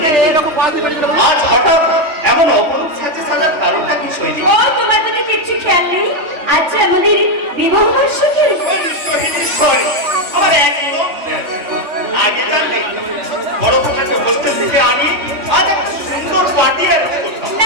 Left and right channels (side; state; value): left; late; 3.2 ms